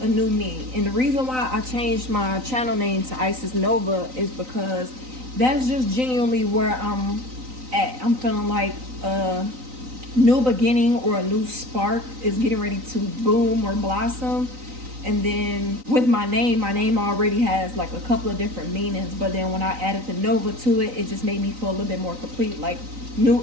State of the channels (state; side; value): late; left; 3.9 ms